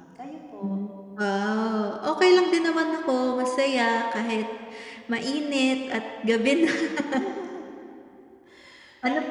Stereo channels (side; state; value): both; identical; correlation 1.00